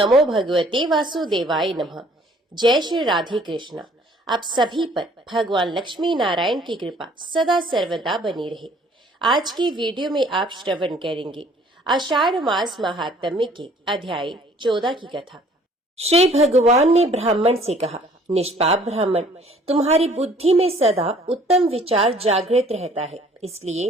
भगवते वासुदेवाय नमः। जय श्री राधे कृष्णा। आप सभी पर भगवान लक्ष्मी नारायण की कृपा सदा सर्वदा बनी रहे। आज की वीडियो में आप श्रवण करेंगे आषाढ़ मास महात्म्य के अध्याय 14 की कथा। श्री भगवान ने ब्राह्मण से कहा, निष्पाप ब्राह्मण, तुम्हारी बुद्धि में सदा उत्तम विचार जागृत रहता है,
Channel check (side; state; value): both; normal; correlation 0.57